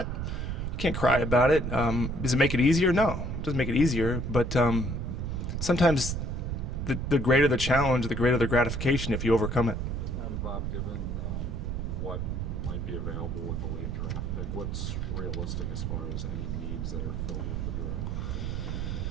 you can't cry about it. Does it make it easier? No, it doesn't make it easier. But sometimes the greater the challenge, the greater the gratification if you overcome it. And Bob, given what might be available with the late draft pick, what's realistic as far as any needs that are filled with the draft?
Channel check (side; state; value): right; noise; rumble, 2 dB below the sound